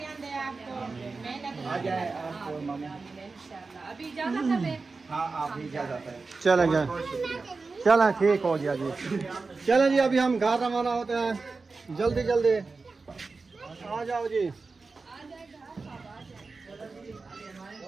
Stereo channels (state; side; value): quieter; left; 4.1 dB